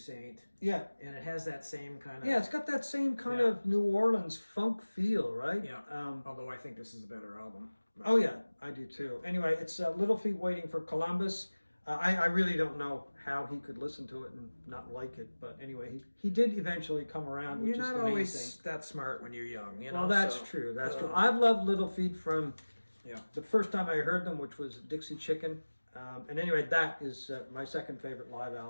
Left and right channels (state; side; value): inverted; both; correlation -1.00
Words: Yeah. And it has that same kind of... Yeah, it's got that same kind of New Orleans funk feel, right? Yeah, although I think this is a better album. Oh yeah, I do too. Anyway, it's Little Feat Waiting for Columbus. I really don't know how he could listen to it and not like it, but anyway, he did eventually come around, which is the main thing. You're not always that smart when you're young, Well, that's true. That's true. I've loved Little Feat from the first time I heard them, which was Dixie Chicken. And anyway, that is my second favorite live